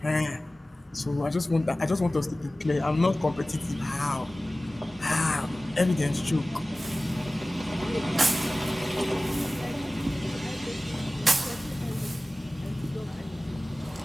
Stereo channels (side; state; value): both; normal; correlation 0.97